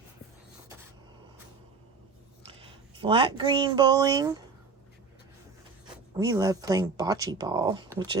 Flat green bowling. We love playing bocce ball, which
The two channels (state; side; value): quieter; left; 4.7 dB